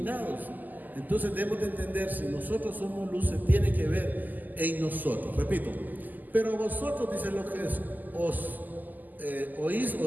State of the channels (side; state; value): left; late; 0.084 ms